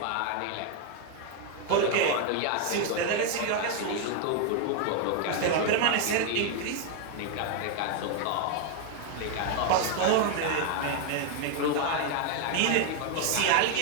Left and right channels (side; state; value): both; different; correlation 0.01